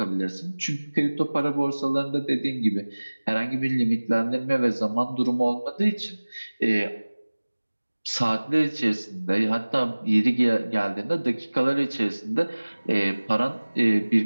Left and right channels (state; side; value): inverted; both; correlation -1.00